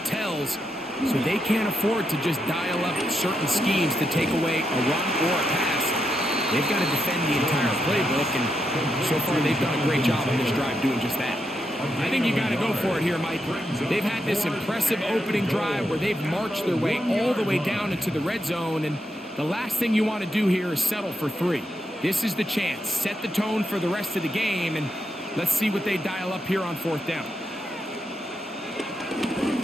tells, so they can't afford to just dial up certain schemes to take away a run or a pass. They've got to defend the entire playbook, and so far they've done a great job on this drive doing just that. I think you got to go for it here, Mike. They've had this impressive opening drive where they've marched their way all the way down into the red zone, and the last thing you want to do here is settle for 3. This is the chance. Set the tone for the rest of the game, and let's see what they dial up here on 4th down.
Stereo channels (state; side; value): normal; both; correlation 0.83